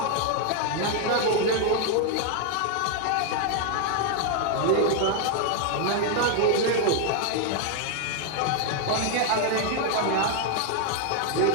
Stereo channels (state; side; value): different; both; correlation 0.00